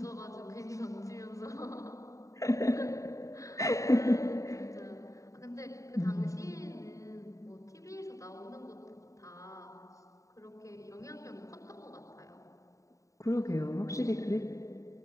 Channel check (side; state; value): right; late; 0.16 ms